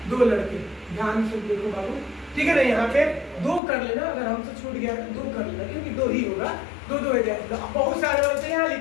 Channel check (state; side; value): drops out; right; at 3.6 s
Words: दो लड़के, ध्यान से देखो बाबू, ठीक है ना? यहाँ पे दो कर लेना, अगर हमसे छूट गया तो दो कर लेना, क्योंकि दो ही होगा, दो हो जाएगा। बहुत सारे होते हैं यहाँ